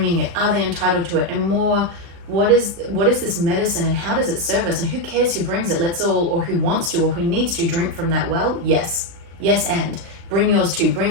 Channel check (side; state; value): left; late; 35 ms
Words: it, are they entitled to it, and more, what is this medicine and how does it serve us, and who cares who brings it? Let's all, or who wants to, or who needs to drink from that well. Yes, and bring yours too.